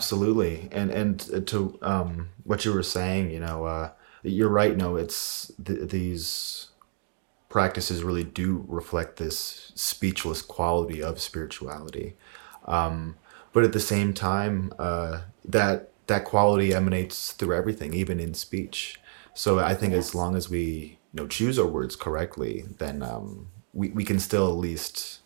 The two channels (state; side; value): silent; left; digital silence